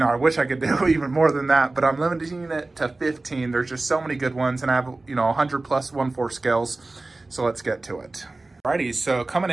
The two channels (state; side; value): quieter; left; 3.1 dB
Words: wish I could do even more than that, but I'm limiting it to 15. There's just so many good ones, and I have 100 plus 1/4 scales. So let's get to it. Alrighty, so coming